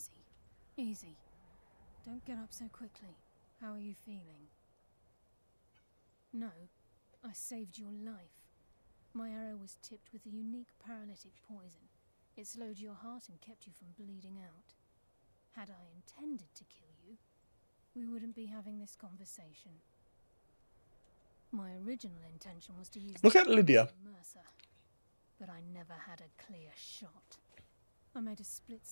Easy. Don't get up so quickly. How are you feeling? No, I saved your life. My arrow was tipped with a unique paralytic poison. It slowed your heart and kept you from bleeding out. Had I intended to kill you, we wouldn't be having this conversation. My original intention was to use Look at Lydia. Mercer, but I never had a clear shot. I made a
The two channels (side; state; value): both; inverted; correlation -1.00